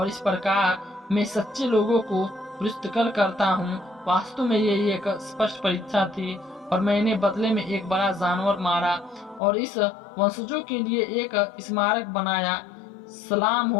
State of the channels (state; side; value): drops out; right; at 9.4 s